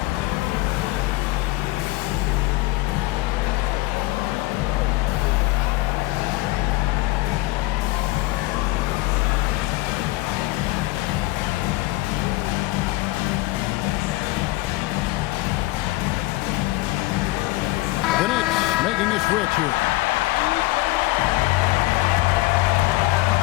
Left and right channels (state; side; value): quieter; right; 19.8 dB